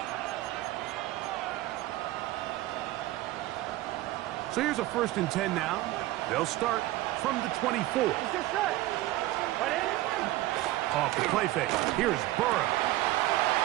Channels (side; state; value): left; quieter; 16.9 dB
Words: So here's a 1st and 10 now. They'll start from the 24. Off the play fake. Here's Burrow.